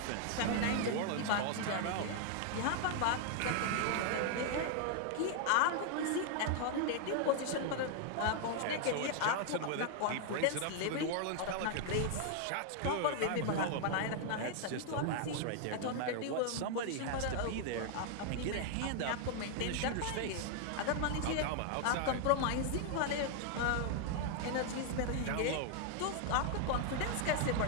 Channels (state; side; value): different; both; correlation 0.00